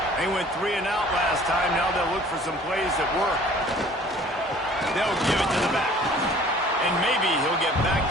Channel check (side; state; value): both; normal; correlation 0.51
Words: They went 3 and out last time. Now they'll look for some plays that work. They'll give it to the back. And maybe he'll get back